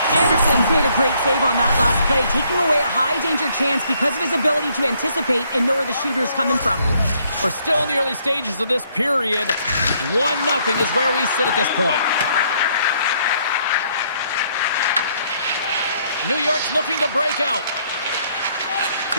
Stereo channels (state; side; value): inverted; both; correlation -0.68